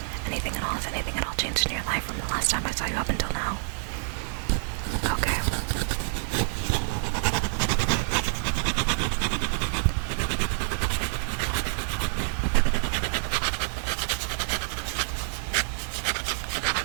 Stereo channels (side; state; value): left; silent; 60 dB below the other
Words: Anything at all? Has anything at all changed in your life from the last time I saw you up until now? Okay.